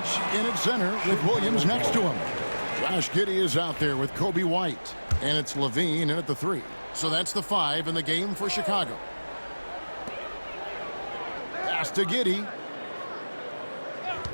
in at center with Williams next to him. Josh Giddey is out there with Kobe White. And it's Levine in at the 3. So that's the 5 in the game for Chicago. Pass to Giddey.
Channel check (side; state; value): both; inverted; correlation -1.00